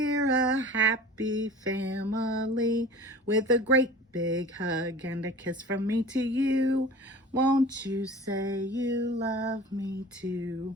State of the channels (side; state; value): both; normal; correlation 0.40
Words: a happy family with a great big hug and a kiss from me to you. Won't you say you love me too?